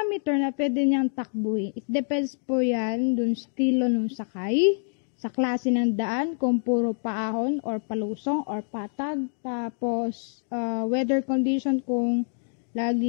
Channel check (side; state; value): right; silent; digital silence